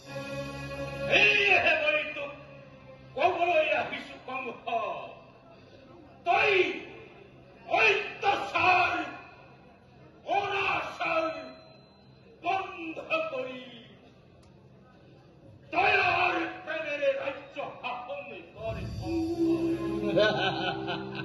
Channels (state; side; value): identical; both; correlation 1.00